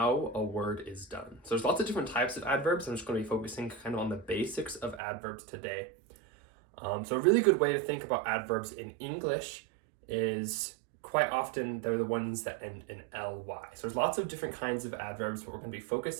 a word is done. So there's lots of different types of adverbs. I'm just going to be focusing kind of on the basics of adverbs today. So a really good way to think about adverbs in English is quite often they're the ones that end in ly. So there's lots of different kinds of adverbs, but we're going to be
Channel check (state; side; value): drops out; left; at 5.0 s